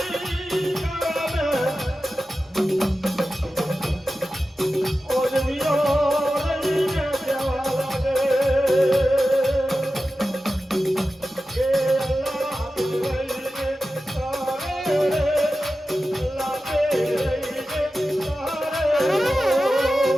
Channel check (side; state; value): both; normal; correlation 0.93